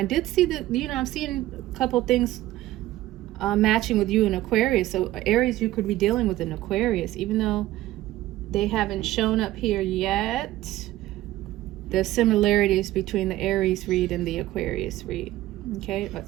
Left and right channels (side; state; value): left; quieter; 15.6 dB